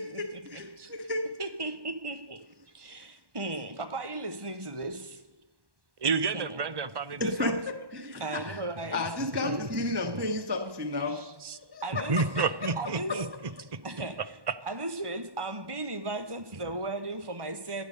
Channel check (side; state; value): left; late; 1.1 ms